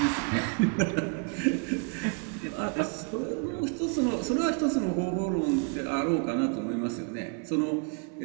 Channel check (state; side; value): quieter; left; 35.7 dB